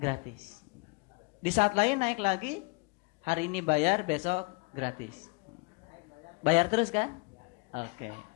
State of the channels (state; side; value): quieter; right; 28.2 dB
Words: Di saat lain naik lagi, hari ini bayar, besok gratis. Bayar terus kan? Oke.